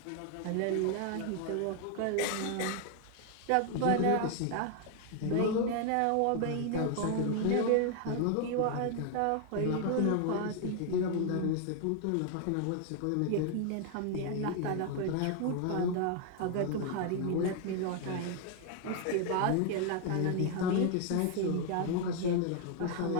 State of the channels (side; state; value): both; different; correlation 0.00